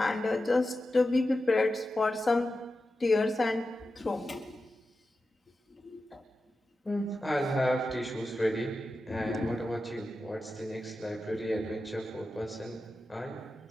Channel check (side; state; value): both; normal; correlation 0.92